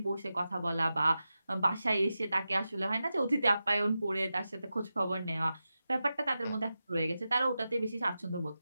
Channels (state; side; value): inverted; both; correlation -0.92